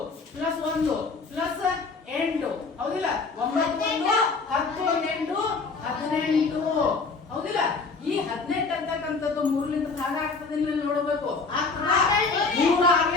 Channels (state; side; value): quieter; right; 4.3 dB